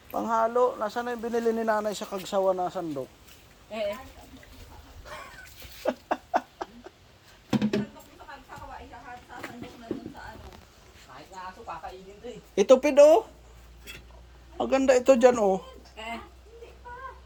Panghalo. Nasaan na yung binili ni nanay sa Kagsawa na sandok? Eh. Kahit nga aso, kakainin to eh. Ito pid oh. Maganda ito dyan oh. Eh.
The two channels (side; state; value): both; identical; correlation 1.00